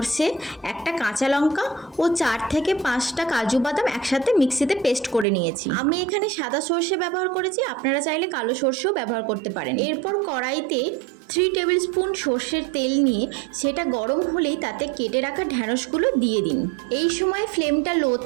একটা কাঁচা লঙ্কা ও 4 থেকে 5টা কাজু বাদাম একসাথে মিক্সিতে পেস্ট করে নিয়েছি। আমি এখানে সাদা সর্ষে ব্যবহার করেছি, আপনারা চাইলে কালো সর্ষেও ব্যবহার করতে পারেন। এরপর কড়াইতে 3 টেবিল স্পুন সর্ষের তেল নিয়ে সেটা গরম হলেই তাতে কেটে রাখা ঢ্যাঁড়সগুলো দিয়ে দিন। এই সময় ফ্লেমটা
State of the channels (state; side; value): drops out; left; at 5.2 s